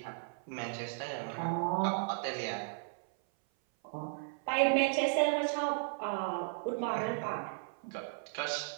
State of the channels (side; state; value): left; silent; 54 dB below the other